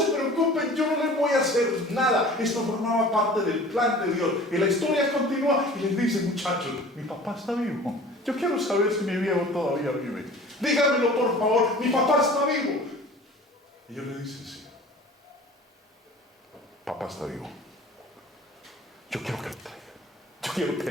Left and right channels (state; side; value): normal; both; correlation 0.44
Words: preocupen, yo no les voy a hacer nada. Esto formaba parte del plan de Dios. Y la historia continúa y les dice, muchachos, mi papá está vivo. Yo quiero saber si mi viejo todavía vive. Díganmelo por favor, mi papá está vivo. Y ellos le dicen, sí, papá está vivo. Yo quiero que lo traiga. Yo quiero